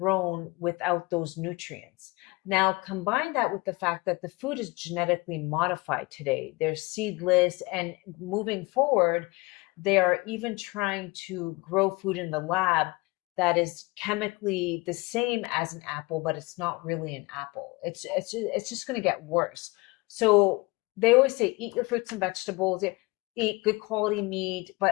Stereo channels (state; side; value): quieter; right; 24.5 dB